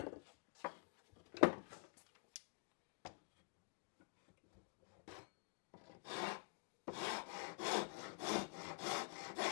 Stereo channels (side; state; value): right; quieter; 34.8 dB